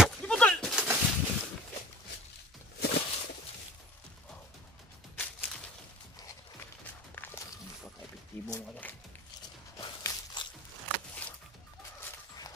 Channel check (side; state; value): both; normal; correlation 0.46